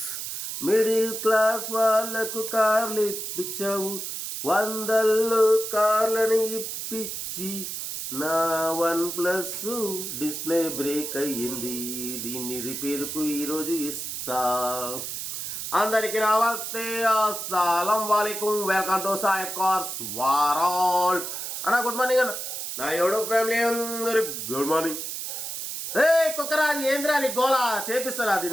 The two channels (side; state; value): right; noise; hiss, 6 dB below the sound